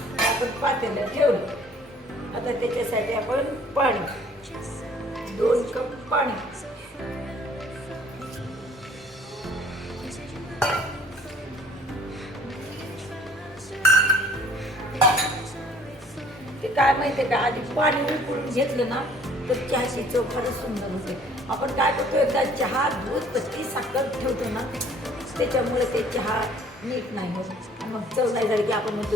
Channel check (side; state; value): both; normal; correlation 0.55